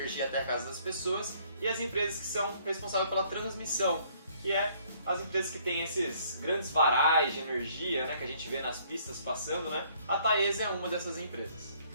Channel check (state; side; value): inverted; both; correlation -0.63